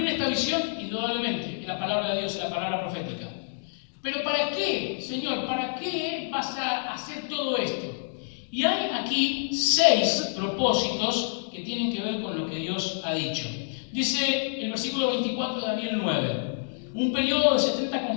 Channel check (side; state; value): right; silent; digital silence